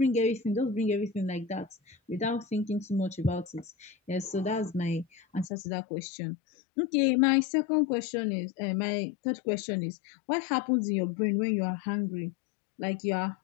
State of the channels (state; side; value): drops out; right; at 5.5 s